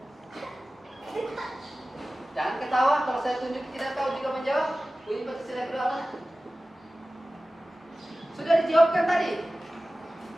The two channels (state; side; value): normal; both; correlation 0.96